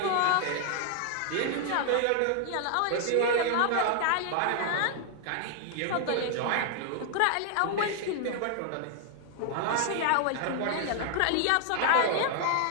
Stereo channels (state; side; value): different; both; correlation 0.00